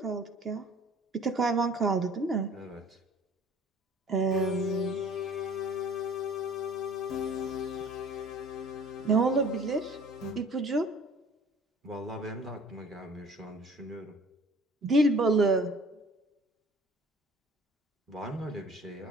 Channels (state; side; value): normal; both; correlation 0.49